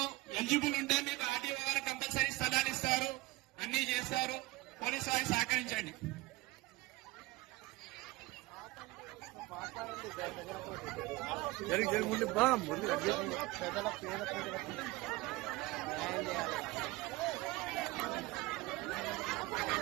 ఎలిజిబుల్ ఉంటే మీకు ఆర్టీఓ గారు కంపల్సరీ స్థలాలు ఇస్తారు, అన్ని చేస్తారు. పోలీసు వారికి సహకరించండి. జరిగి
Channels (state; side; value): quieter; left; 20.4 dB